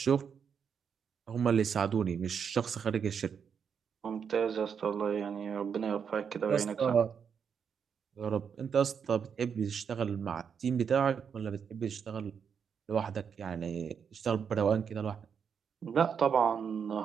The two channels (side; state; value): left; quieter; 7.0 dB